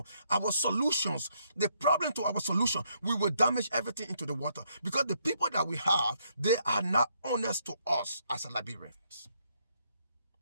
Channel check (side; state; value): both; inverted; correlation -0.73